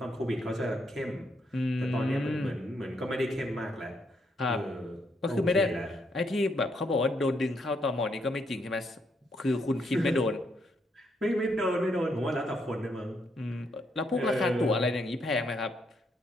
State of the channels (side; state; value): both; normal; correlation 0.76